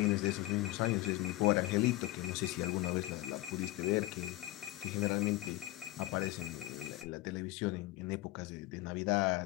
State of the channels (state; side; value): quieter; right; 17.6 dB